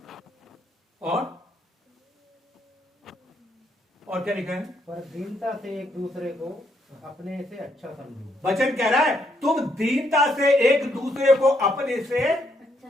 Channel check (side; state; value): both; normal; correlation 0.74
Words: और क्या लिखा है? पर दीनता से एक दूसरे को अपने से अच्छा समझो। वचन कह रहा है तुम दीनता से एक दूसरे को अपने से